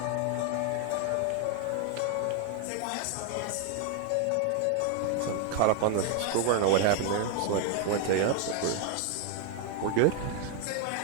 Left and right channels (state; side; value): different; both; correlation 0.01